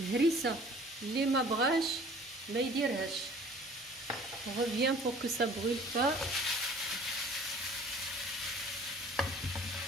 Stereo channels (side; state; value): both; normal; correlation 0.50